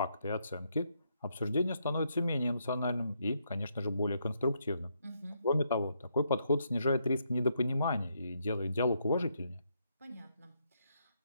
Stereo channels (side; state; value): both; inverted; correlation -0.76